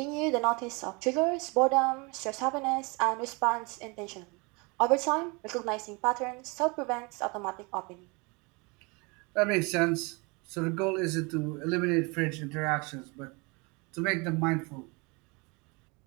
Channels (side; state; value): left; quieter; 28.8 dB